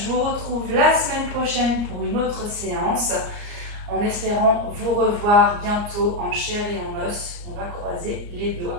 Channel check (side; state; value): left; late; 34 ms